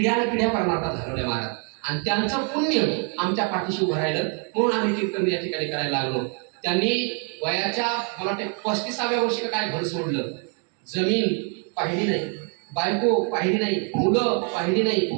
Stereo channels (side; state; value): left; quieter; 40.0 dB